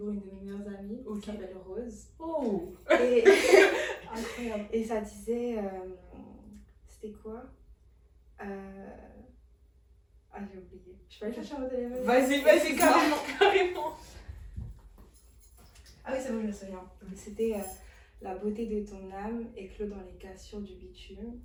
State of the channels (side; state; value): both; identical; correlation 1.00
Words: une de mes meilleures amies qui s'appelle Rose. Oh. Et... Incroyable. Et ça disait. C'était quoi Ah, j'ai oublié. Je peux aller chercher mon téléphone. Vas-y, carrément. Ah oui, c'est bon, je me souviens. C'était la beauté de ton âme éclot dans les cassures du bitume.